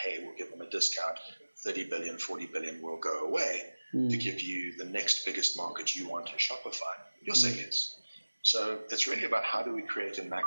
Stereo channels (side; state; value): both; inverted; correlation -1.00